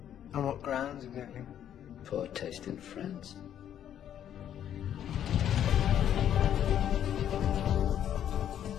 On what grounds, exactly? Poor taste in France.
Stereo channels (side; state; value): right; quieter; 10.2 dB